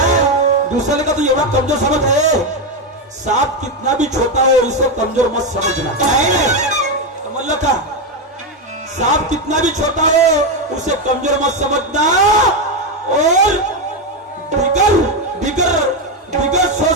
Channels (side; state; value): both; normal; correlation 0.09